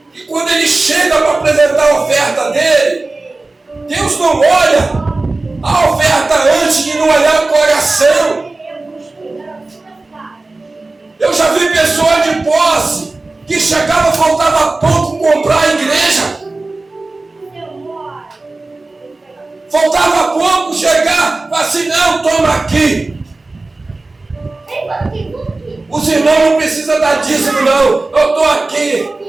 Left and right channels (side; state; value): left; quieter; 3.2 dB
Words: E quando ele chega para apresentar a oferta dele, Deus não olha a oferta antes de não olhar o coração. Eu já vi pessoas de posse que chegava, faltava pouco comprar a igreja. Faltava pouco chegar, assim: não, toma aqui. Os irmãos não precisam dar dízimo não, eu estou aqui.